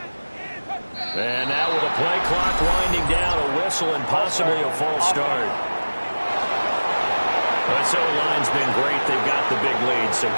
And now with a play clock winding down, a whistle and possibly a false start. This O-line's been great. They've got the big lead, so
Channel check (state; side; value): inverted; both; correlation -1.00